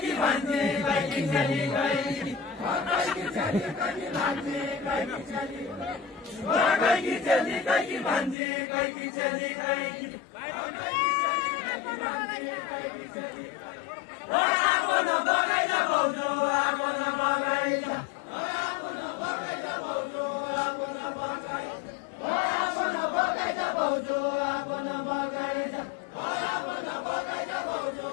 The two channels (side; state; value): right; drops out; at 8.3 s